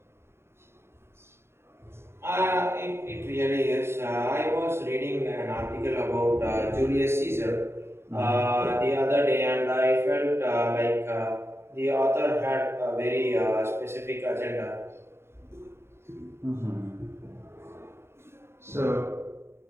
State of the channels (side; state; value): left; late; 0.12 ms